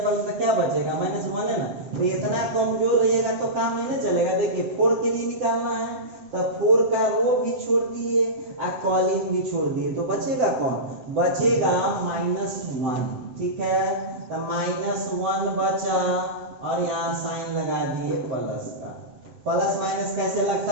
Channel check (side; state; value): left; late; 7.8 ms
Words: कॉलम तो क्या बचेगा -1 है ना। तो इतना कमजोर रहिएगा तो काम ही नहीं चलेगा। देखिए 4 के लिए निकालना है तो 4 का रो भी छोड़ दिए और कॉलम भी छोड़ दिए तो बचेगा कौन, बचेगा -1, ठीक है। तो -1 बचा और यहाँ साइन लगा दिए प्लस का। प्लस माइनस कैसे